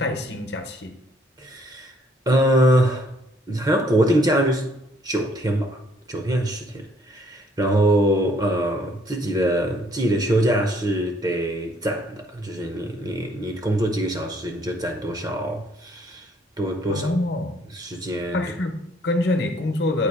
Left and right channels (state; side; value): normal; both; correlation 0.64